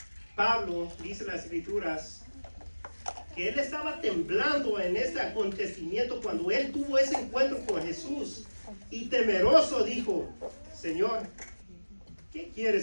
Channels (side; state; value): both; inverted; correlation -1.00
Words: Pablo, dice las escrituras, que él estaba temblando en este acontecimiento cuando él tuvo ese encuentro con Jesús. Y temeroso dijo, Señor, ¿qué